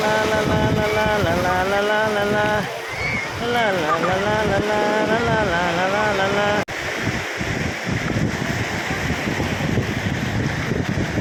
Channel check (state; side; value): identical; both; correlation 1.00